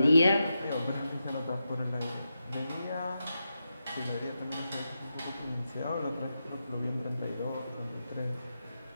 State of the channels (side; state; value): both; inverted; correlation -0.88